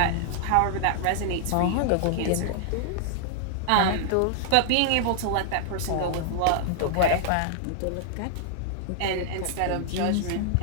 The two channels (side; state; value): both; different; correlation -0.01